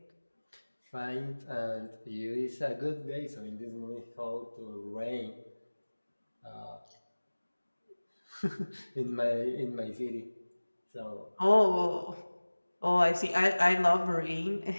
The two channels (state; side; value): inverted; both; correlation -1.00